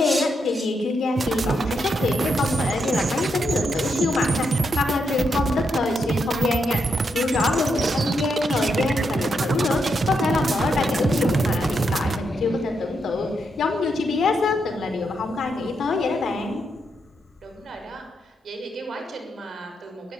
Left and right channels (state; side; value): normal; both; correlation 0.81